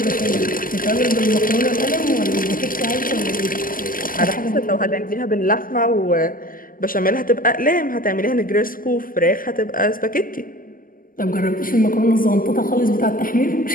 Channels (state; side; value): late; right; 0.41 ms